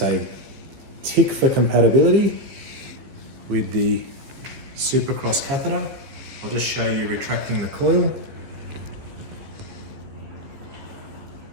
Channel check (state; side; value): late; left; 15 ms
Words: a tick for compatibility with the Supercross catheter. I'll just show you retracting the coil.